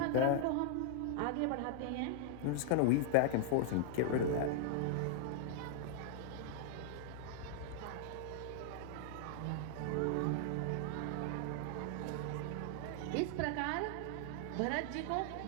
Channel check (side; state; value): both; different; correlation -0.01